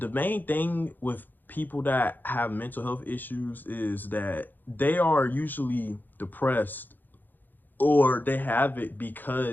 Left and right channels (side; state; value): right; late; 0.088 ms